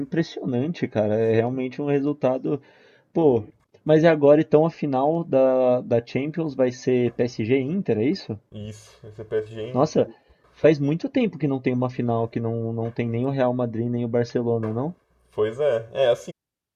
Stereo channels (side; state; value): both; identical; correlation 1.00